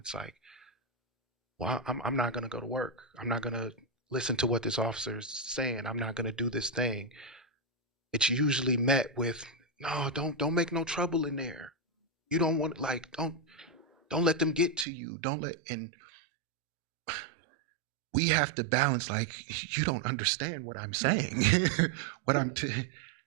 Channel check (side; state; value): left; drops out; at 14.9 s